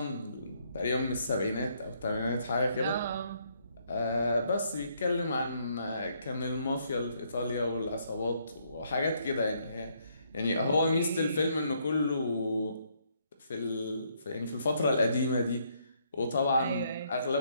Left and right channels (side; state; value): both; inverted; correlation -0.71